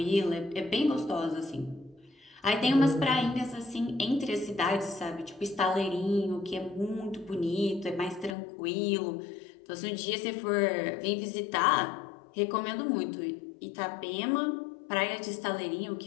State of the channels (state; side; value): drops out; right; at 8.3 s